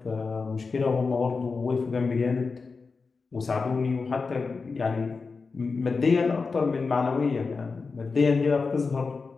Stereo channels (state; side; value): quieter; right; 4.5 dB